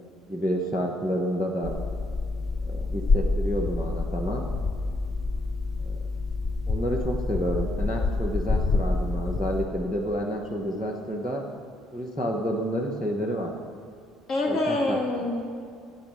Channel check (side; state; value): both; normal; correlation 0.76